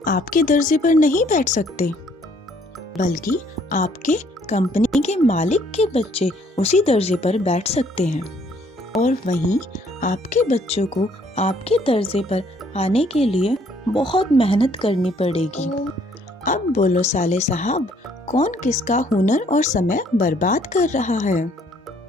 आपके दर्जे पर नहीं बैठ सकते, बल्कि आपके कंपनी के मालिक के बच्चे उसी दर्जे पर बैठ सकते हैं और वहीं आपके बच्चों को आपके दर्जे पर आने के लिए बहुत मेहनत करनी पड़ेगी। अब बोलो साले साहब, कौन किसका हुनर और समय बर्बाद कर रहा है?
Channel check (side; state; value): both; normal; correlation 0.63